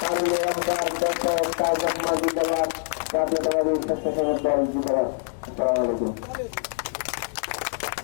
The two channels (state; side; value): silent; right; digital silence